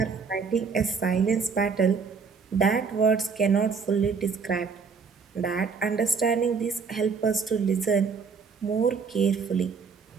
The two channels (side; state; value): left; quieter; 5.4 dB